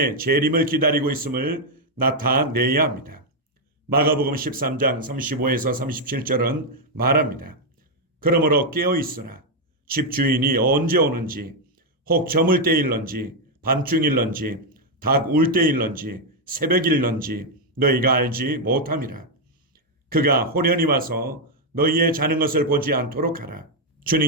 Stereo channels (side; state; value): both; normal; correlation 0.01